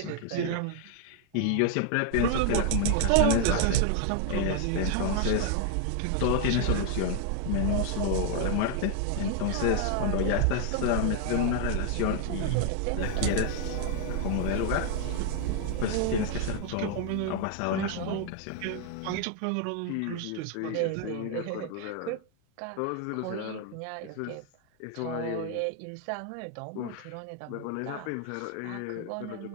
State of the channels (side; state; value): both; different; correlation 0.00